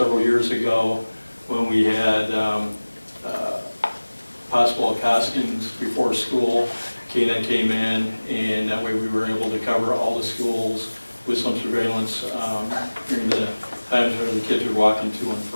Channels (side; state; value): both; inverted; correlation -1.00